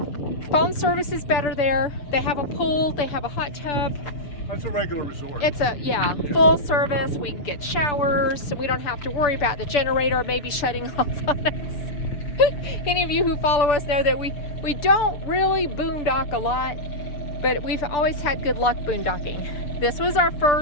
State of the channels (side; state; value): right; late; 6.8 ms